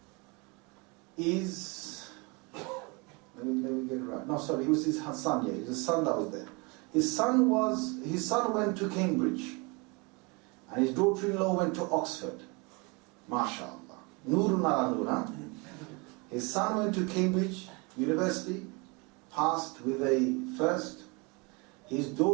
is, let me get it right. No, sorry, it was his son, yeah, it was his son that was there. His son went to Cambridge, and his daughter-in-law went to Oxford. MashaAllah. Nurun ala nur, huh? His son went to Cambridge University, passed with a first. His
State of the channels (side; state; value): left; quieter; 29.0 dB